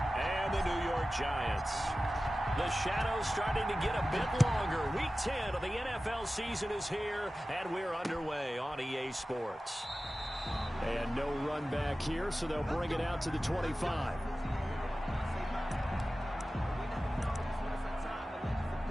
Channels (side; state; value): both; normal; correlation 0.95